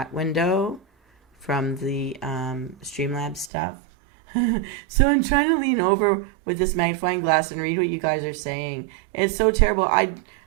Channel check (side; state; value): left; drops out; at 3.5 s